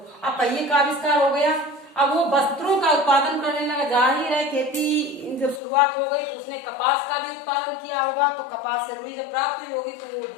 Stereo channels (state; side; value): drops out; right; at 5.6 s